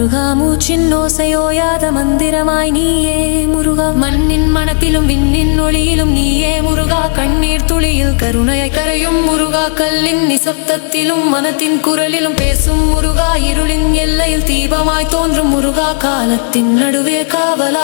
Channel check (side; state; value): right; silent; digital silence